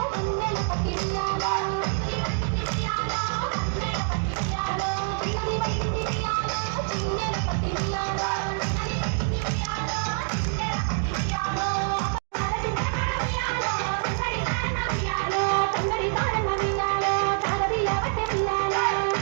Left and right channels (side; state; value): left; silent; 55 dB below the other